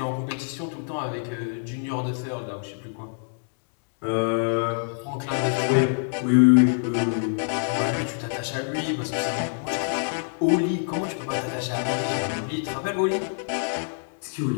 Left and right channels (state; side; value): silent; right; digital silence